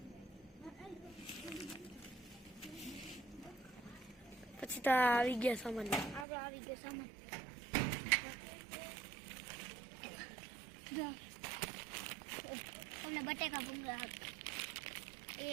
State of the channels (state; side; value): drops out; left; at 6.2 s